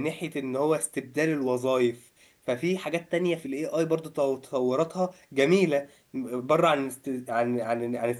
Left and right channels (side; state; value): both; identical; correlation 1.00